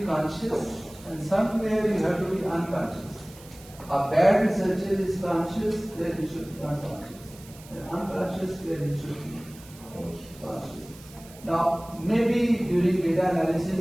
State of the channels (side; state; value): right; noise; hiss, 21 dB below the sound